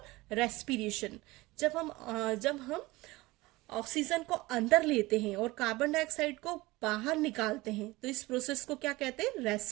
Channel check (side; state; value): left; quieter; 20.7 dB